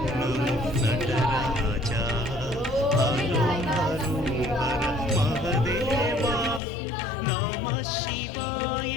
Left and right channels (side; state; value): right; drops out; at 6.6 s